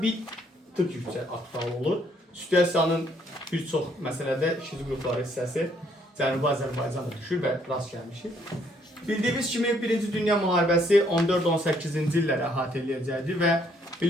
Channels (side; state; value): both; normal; correlation 0.67